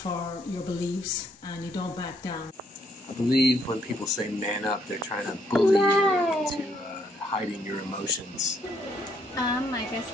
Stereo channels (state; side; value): normal; both; correlation 0.71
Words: your beliefs and you don't back down. I believe when people say man up, they're trying to bully you into hiding your emotions. I guess